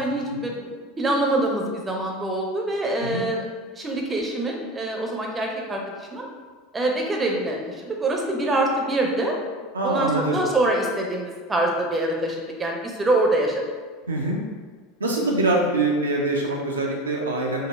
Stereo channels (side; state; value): both; normal; correlation 0.32